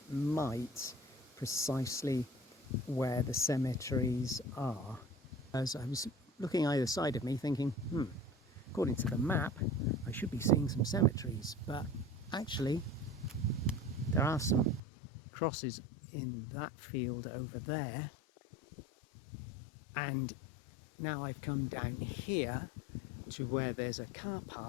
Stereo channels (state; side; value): drops out; right; at 14.8 s